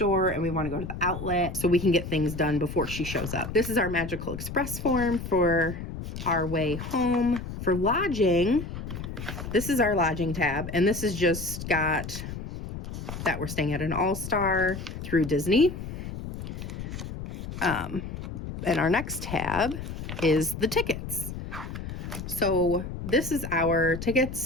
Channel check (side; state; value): left; noise; rumble, 8 dB below the sound